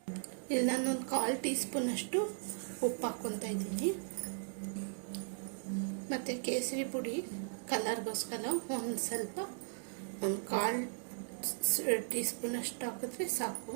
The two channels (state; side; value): silent; left; digital silence